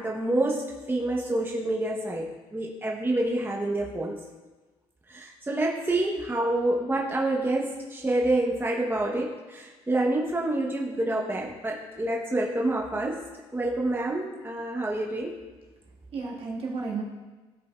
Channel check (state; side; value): normal; both; correlation 0.83